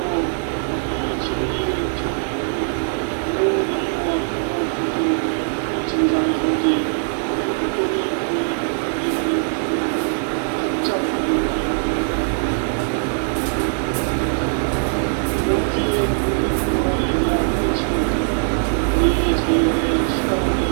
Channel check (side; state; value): left; silent; 65 dB below the other